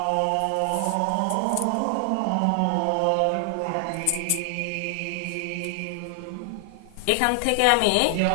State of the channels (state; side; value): different; both; correlation 0.00